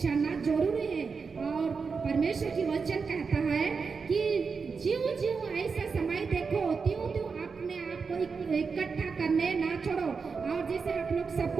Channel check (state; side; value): quieter; left; 5.2 dB